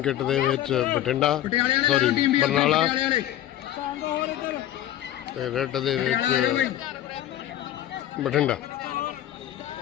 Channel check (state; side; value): quieter; right; 12.8 dB